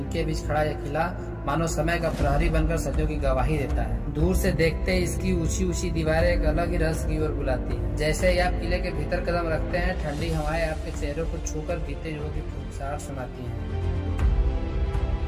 बीच खड़ा यह किला मानो समय का प्रहरी बनकर सदियों की गवाही देता है। दूर से देखते ही इसकी ऊंची ऊंची दीवारें एक अलग ही रहस्य की ओर बुलाती है। जैसे ही आप किले के भीतर कदम रखते हैं, ठंडी हवाएं आपके चेहरों को छूकर बीते युगों की फुसफुसाहट सुनाती है।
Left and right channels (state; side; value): identical; both; correlation 1.00